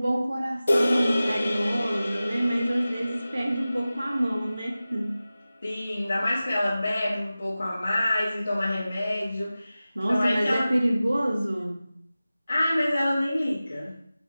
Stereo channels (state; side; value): inverted; both; correlation -0.96